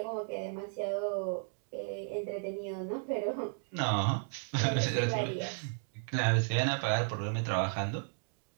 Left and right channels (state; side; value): silent; left; 55 dB below the other